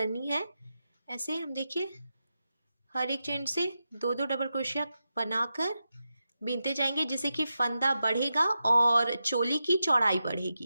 है। ऐसे हम देखिए हर एक चेन से 2-2 डबल क्रोशिया बनाकर बीनते जाएंगे जिससे कि फंदा बढ़ेगा और चोली की चौड़ाई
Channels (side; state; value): both; inverted; correlation -0.89